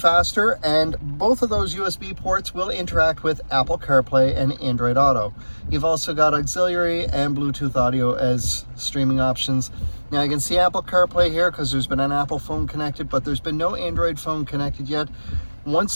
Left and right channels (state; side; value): inverted; both; correlation -1.00